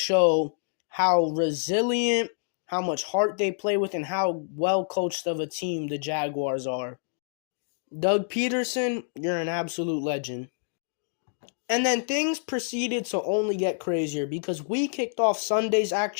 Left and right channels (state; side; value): silent; right; digital silence